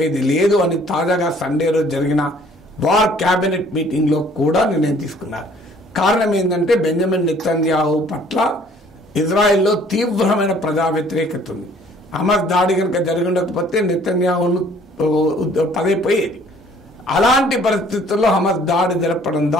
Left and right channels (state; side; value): normal; both; correlation 0.57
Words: లేదు అని తాజాగా సండే రోజు జరిగిన వార్ క్యాబినెట్ మీటింగ్ లో కూడా నిర్ణయం తీసుకున్నారు. కారణం ఏంటంటే బెంజమిన్ నెతన్యాహు పట్ల ఇజ్రాయెల్లో తీవ్రమైన ప్రజా వ్యతిరేకత ఉంది. హమాస్ దాడి కనుక జరిగి ఉండకపోతే నెతన్యాహును పదైపోయేది. అలాంటి పరిస్థితుల్లో హమాస్ దాడి జరపడం